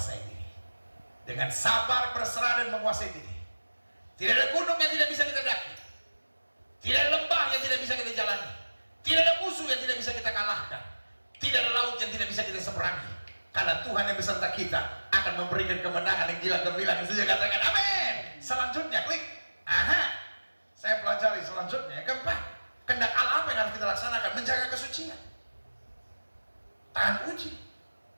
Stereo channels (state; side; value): inverted; both; correlation -1.00